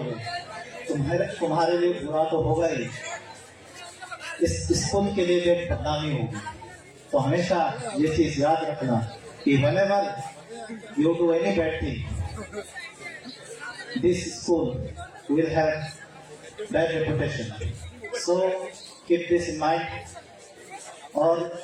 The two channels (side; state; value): both; identical; correlation 1.00